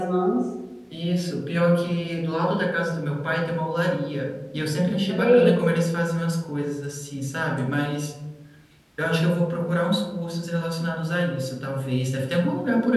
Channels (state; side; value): identical; both; correlation 1.00